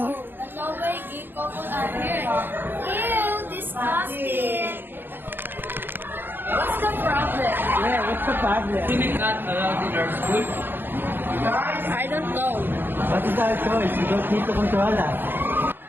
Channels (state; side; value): late; left; 0.098 ms